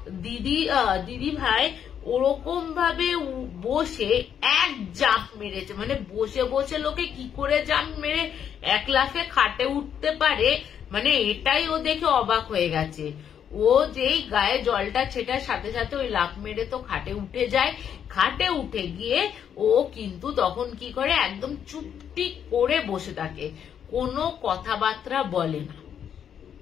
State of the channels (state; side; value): quieter; right; 8.6 dB